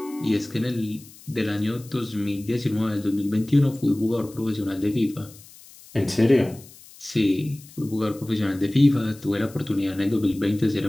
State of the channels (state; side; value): noise; left; hiss, 21 dB below the sound